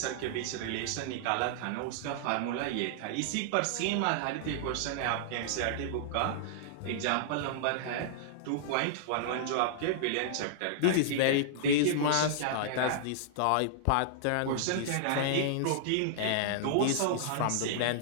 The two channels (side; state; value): both; different; correlation -0.01